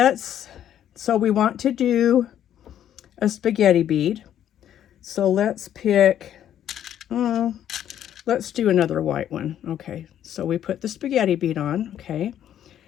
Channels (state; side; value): quieter; right; 10.6 dB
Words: So we want to do a spaghetti bead. So let's pick, let's do another white one. Okay, so we put the spaghetti bead on, okay?